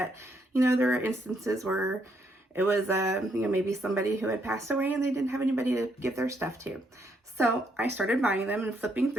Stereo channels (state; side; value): normal; both; correlation 0.74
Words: you know, there are instances where it was, you know, maybe somebody who had passed away and they didn't have anybody to give their stuff to. So I started buying them and flipping